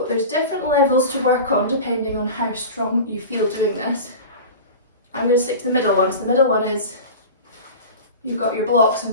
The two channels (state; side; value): inverted; both; correlation -0.32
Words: there's different levels to work on depending on how strong you feel doing this. I'm going to stick to the middle one. So the middle one is you've got your blocks and